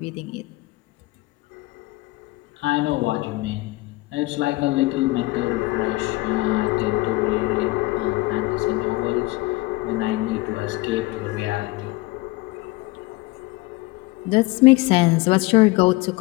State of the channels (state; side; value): quieter; right; 21.4 dB